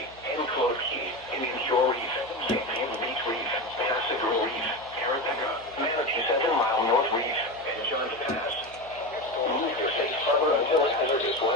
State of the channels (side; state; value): right; noise; hum, 22 dB below the sound